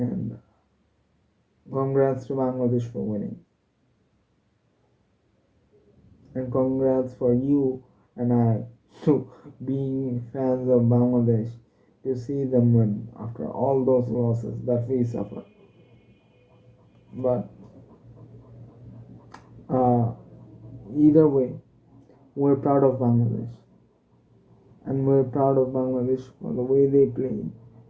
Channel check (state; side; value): identical; both; correlation 1.00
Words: congrats to Bangladesh for winning, and congrats for you and I to being fans of Bangladesh, to see them win after all those losses that we suffer. But uh, either way, we're proud of Bangladesh, and we're proud of Bangladesh for the way they played